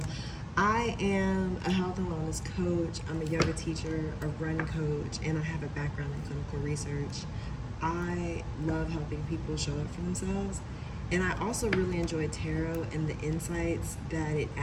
I am a health and wellness coach. I'm a yoga teacher, a run coach, and I have a background in clinical research. I love helping people show up for themselves. And I also really enjoy tarot and the insights that it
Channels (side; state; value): both; identical; correlation 1.00